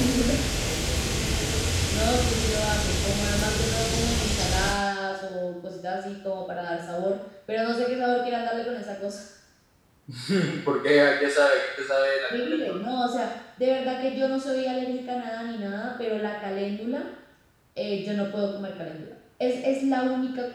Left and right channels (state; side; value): identical; both; correlation 1.00